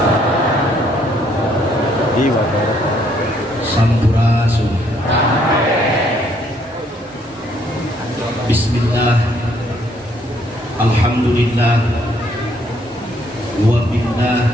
Sampurasun. Bismillah. Alhamdulillah. Wa billah.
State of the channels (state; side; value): normal; both; correlation 0.67